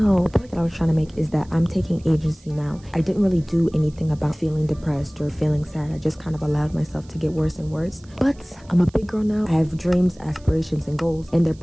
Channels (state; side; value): noise; right; hiss, 28 dB below the sound